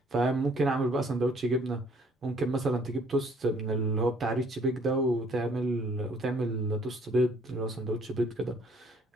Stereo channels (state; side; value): normal; both; correlation 0.61